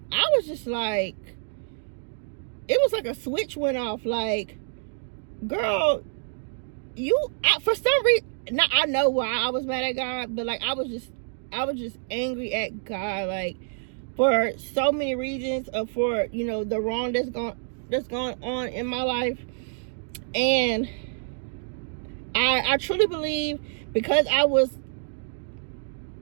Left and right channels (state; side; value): silent; left; digital silence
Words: I was just like, it was like a switch went off. Like, girl, for some reason, now I know why I was mad at God, but like I was just angry at God, like, for so many reasons, for, you know, the wrong that's gone on in my life. And I truly believe, because I was